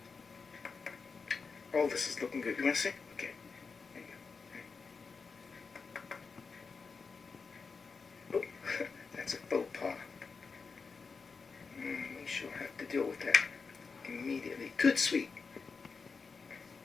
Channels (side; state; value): right; quieter; 4.9 dB